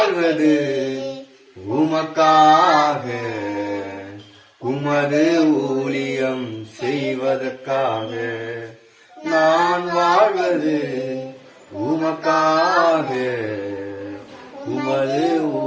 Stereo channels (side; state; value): both; identical; correlation 1.00